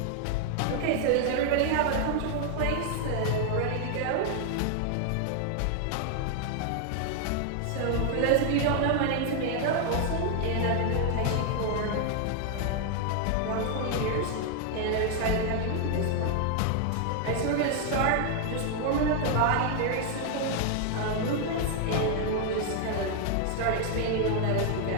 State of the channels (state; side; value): different; both; correlation 0.00